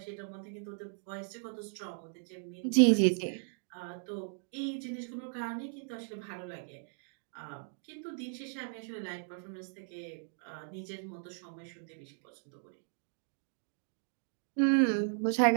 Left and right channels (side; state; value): left; silent; digital silence